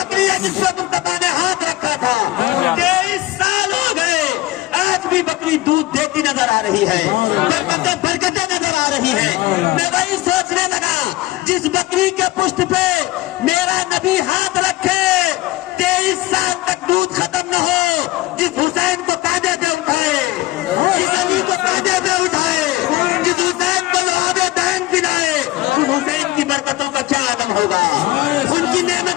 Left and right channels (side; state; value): right; quieter; 18.0 dB